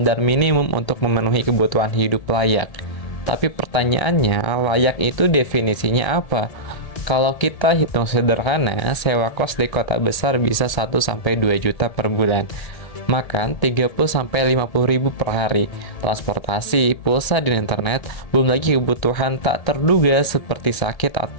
minimum untuk memenuhi kebutuhan hidup layak. Tapi pertanyaannya, layak itu definisinya apa? Kalau kita hitung sederhana, sewa kos di kota besar bisa 1-2 juta per bulan. Makan 30-50 ribu per hari, transportasi, pulsa dan internet, belum lagi kebutuhan tak terduga seperti sakit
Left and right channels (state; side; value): late; right; 1.7 ms